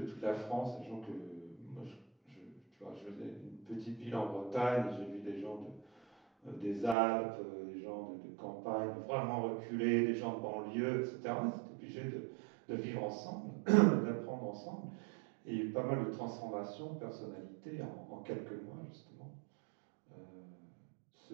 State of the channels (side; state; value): left; drops out; at 7.0 s